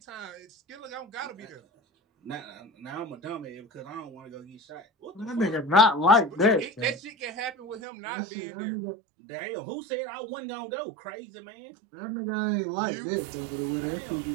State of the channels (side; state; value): left; drops out; at 7.8 s